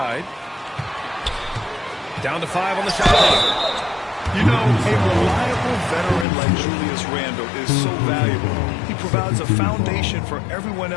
Down to 5 on the shot clock. You know, a reliable veteran like Julius Randle is so valuable. He provides a foundation for everyone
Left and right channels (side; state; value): right; drops out; at 6.2 s